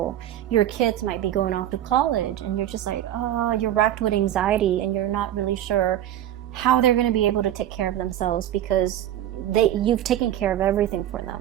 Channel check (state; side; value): quieter; left; 11.8 dB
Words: your kids might be going off to college, and you're just like, oh, you're racked with anxiety, and you're not really sure how they're going to be able to take care of themselves, because you've taken care of everything for